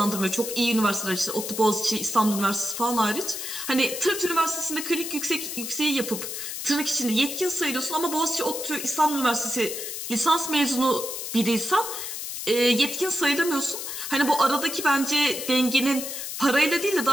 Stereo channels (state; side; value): noise; left; hiss, 6 dB below the sound